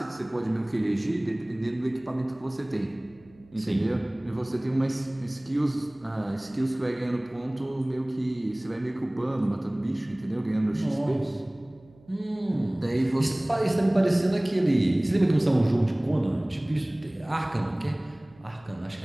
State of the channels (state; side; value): noise; right; hum, 27 dB below the sound